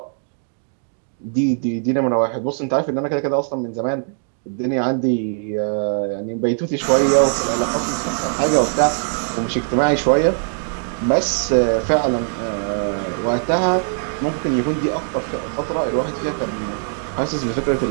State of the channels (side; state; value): left; silent; 65 dB below the other